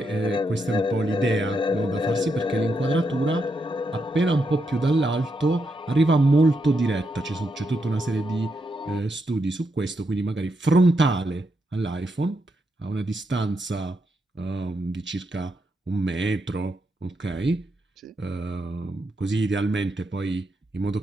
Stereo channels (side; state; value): both; normal; correlation 0.82